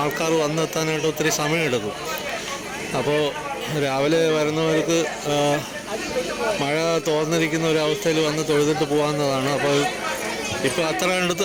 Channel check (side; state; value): both; identical; correlation 1.00